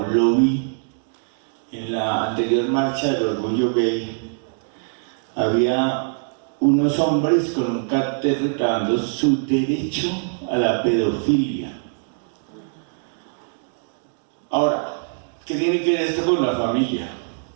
lo vi en la anterior marcha del orgullo gay. Había unos hombres con un cartel reclamando su derecho a la pedofilia. Ahora, ¿qué tiene que ver esto con la familia?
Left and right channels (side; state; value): left; silent; digital silence